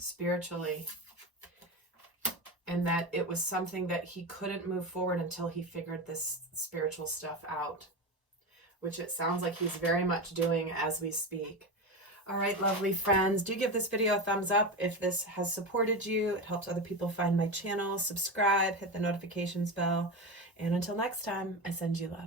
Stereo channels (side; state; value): both; normal; correlation 0.20